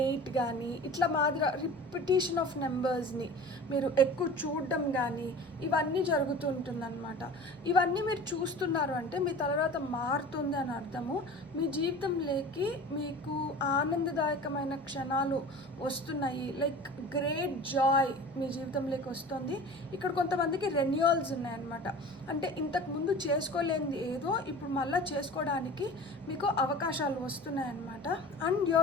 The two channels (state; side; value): noise; left; hum, 30 dB below the sound